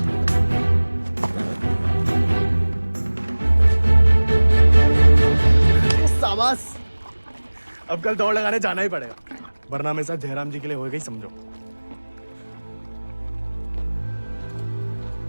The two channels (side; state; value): both; inverted; correlation -1.00